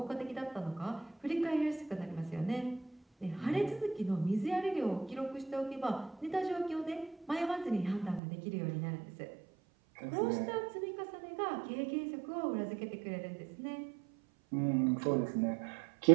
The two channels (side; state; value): left; drops out; at 8.2 s